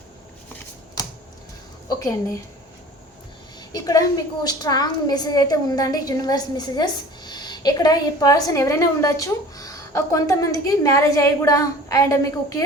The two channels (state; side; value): normal; both; correlation 0.44